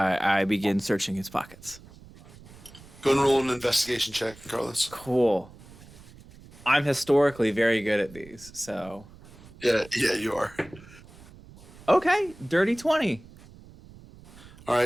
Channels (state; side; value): noise; right; rumble, 21 dB below the sound